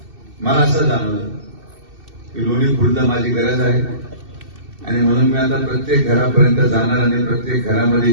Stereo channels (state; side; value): late; left; 2.7 ms